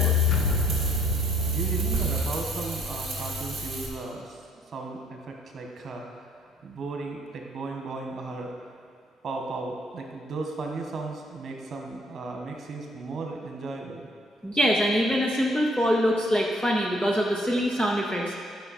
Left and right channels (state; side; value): normal; both; correlation 0.64